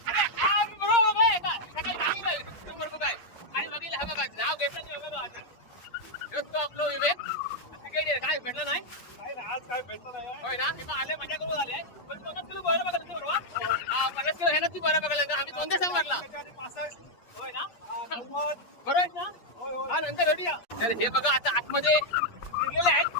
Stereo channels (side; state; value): right; late; 8.5 ms